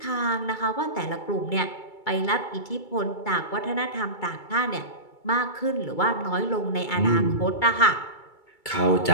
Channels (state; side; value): late; right; 2.3 ms